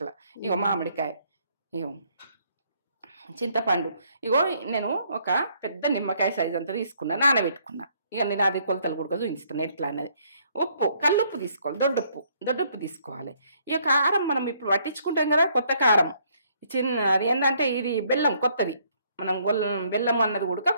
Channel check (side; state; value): both; inverted; correlation -0.67